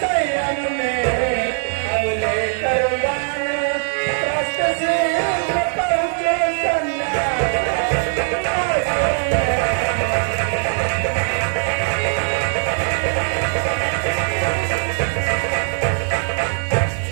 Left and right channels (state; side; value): silent; left; digital silence